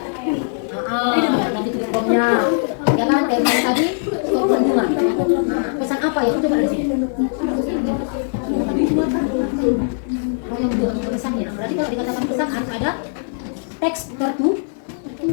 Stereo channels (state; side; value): silent; right; 63 dB below the other